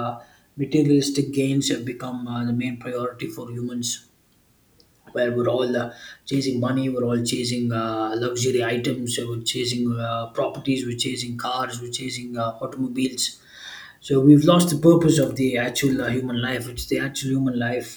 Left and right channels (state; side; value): identical; both; correlation 1.00